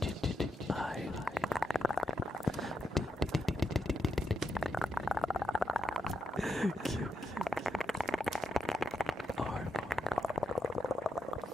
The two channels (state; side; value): normal; both; correlation 0.85